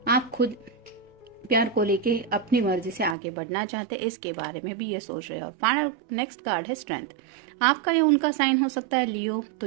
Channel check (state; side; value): drops out; left; at 3.2 s